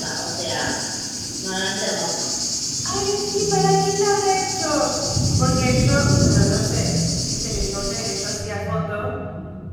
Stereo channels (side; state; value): both; identical; correlation 1.00